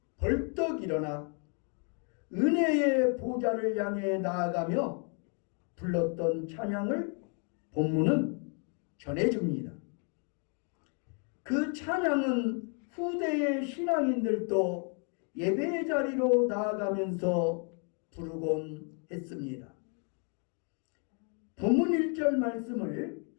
벌떡 일어나 은혜의 보좌를 향해 나아가며 불렀던 찬양을 본문은 전해줍니다. 그 찬양은 후대의 신앙인들도 예배의 자리로 나아가면서 부르곤 했습니다. 본문 1절 말씀을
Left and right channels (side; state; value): right; quieter; 39.2 dB